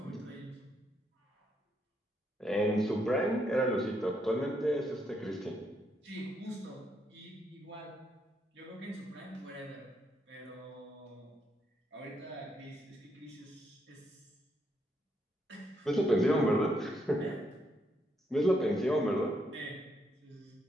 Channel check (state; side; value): normal; both; correlation 0.76